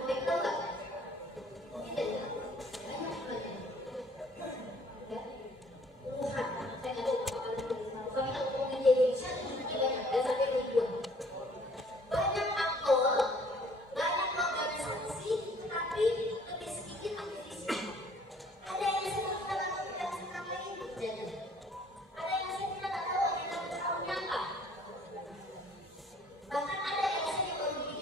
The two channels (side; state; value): both; normal; correlation 0.58